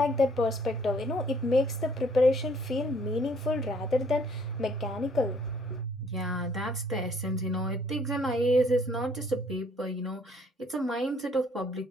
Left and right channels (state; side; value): normal; both; correlation 0.62